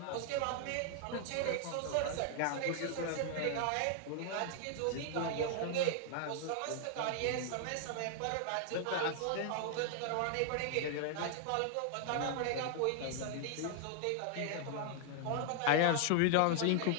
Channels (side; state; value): both; different; correlation 0.00